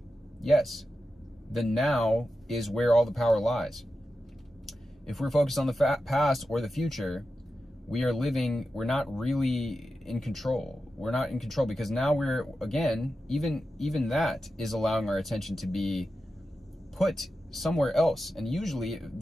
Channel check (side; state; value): both; normal; correlation 0.91